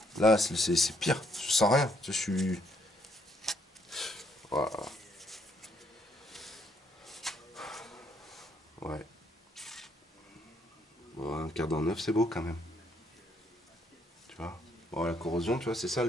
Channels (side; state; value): both; normal; correlation 0.70